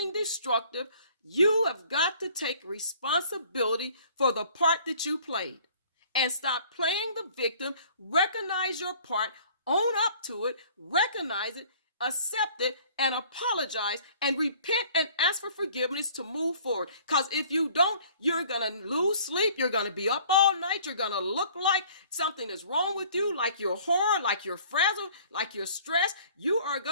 destructive. You have got to take responsibility for the part that you played and stop playing the victim. Recognize your part, own up to it, recognize it, accept it, and apologize and repent and ask for forgiveness to move forward. Because if you don't, you're going to lose sleep. You're going to be up all night. You're going to look like something is wrong with you, like you're horror, like you're frazzled, like you're stressed. You are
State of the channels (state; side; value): inverted; both; correlation -0.53